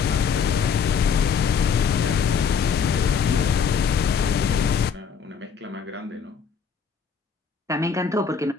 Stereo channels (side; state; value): right; quieter; 6.5 dB